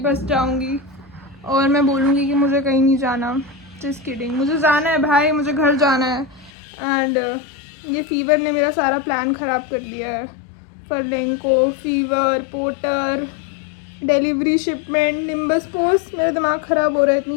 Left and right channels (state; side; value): drops out; right; at 6.5 s